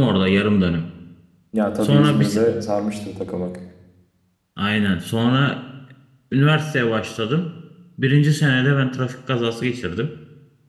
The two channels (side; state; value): both; identical; correlation 1.00